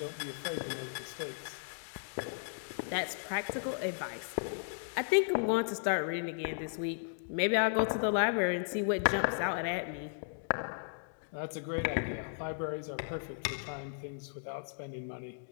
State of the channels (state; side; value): silent; right; digital silence